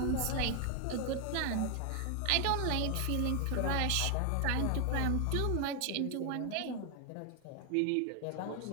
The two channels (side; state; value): both; different; correlation 0.00